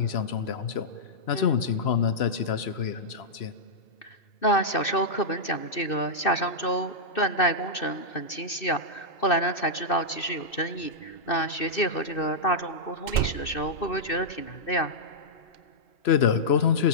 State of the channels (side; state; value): right; late; 2.6 ms